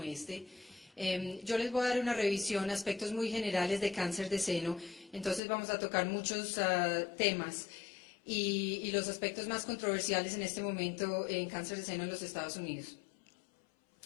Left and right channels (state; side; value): drops out; right; at 5.4 s